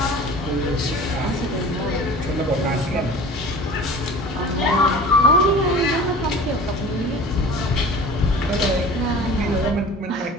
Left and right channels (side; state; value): both; normal; correlation 0.41